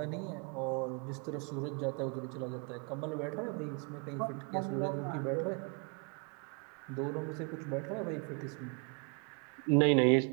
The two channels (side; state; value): left; quieter; 37.3 dB